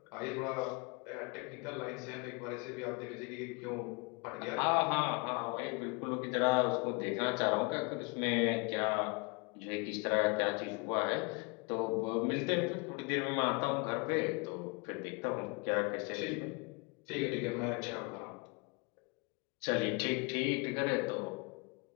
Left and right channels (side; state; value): right; quieter; 31.3 dB